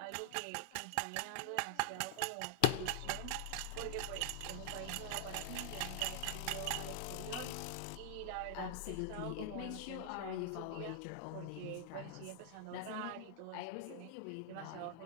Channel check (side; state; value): both; different; correlation -0.01